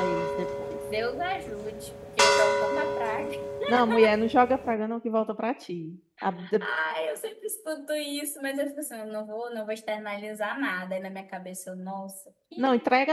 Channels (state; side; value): identical; both; correlation 1.00